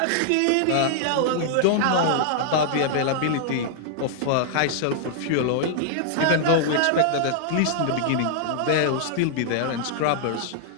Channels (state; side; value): different; both; correlation -0.01